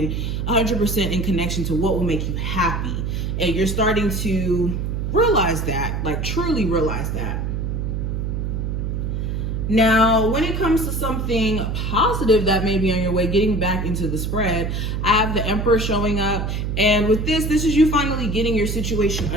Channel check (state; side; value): noise; right; hum, 2 dB below the sound